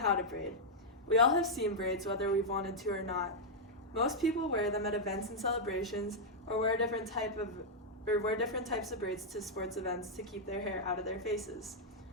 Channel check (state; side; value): normal; both; correlation -0.05